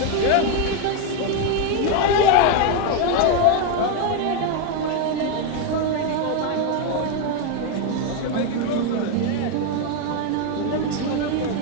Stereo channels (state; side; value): different; both; correlation 0.01